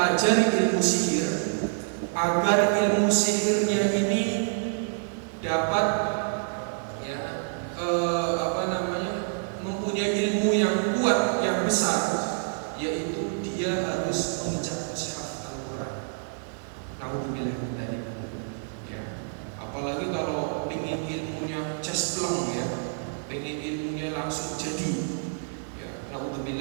ilmu sihir, agar ilmu sihirnya ini dapat ya mempunyai ilmu yang kuat, yang besar, yaitu dia harus menginjak mushaf Al-Quran. Naudzubillah min dzalik. Ya. Apalagi kalau ingin ilmunya jaspleng ya, ingin ilmunya langsung jadi, ya,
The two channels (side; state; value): left; silent; 60 dB below the other